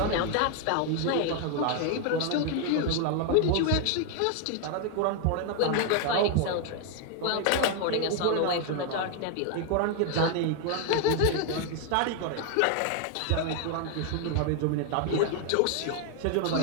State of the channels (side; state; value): both; different; correlation 0.00